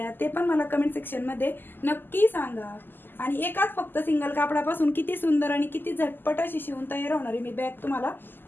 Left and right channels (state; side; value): late; right; 0.093 ms